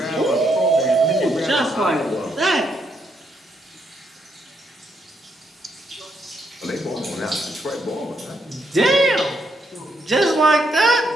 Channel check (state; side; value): normal; both; correlation 0.77